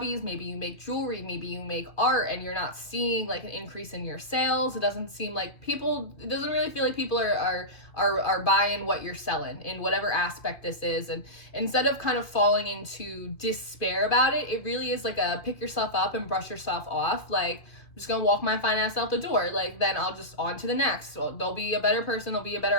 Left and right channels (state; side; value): late; right; 2.5 ms